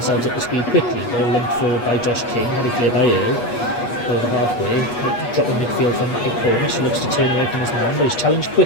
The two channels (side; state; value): right; late; 8.3 ms